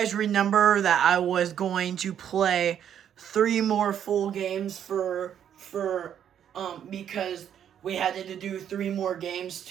remember that I was going to play 3 more full games because we had to do 3 more games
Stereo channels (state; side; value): quieter; left; 9.4 dB